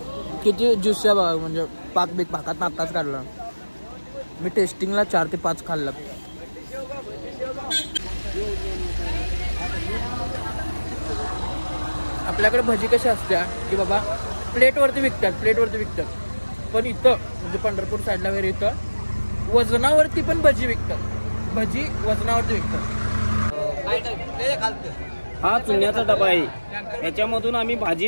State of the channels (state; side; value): inverted; both; correlation -1.00